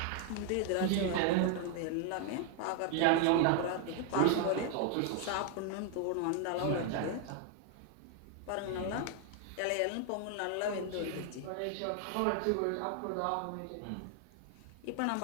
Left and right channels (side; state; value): both; different; correlation 0.00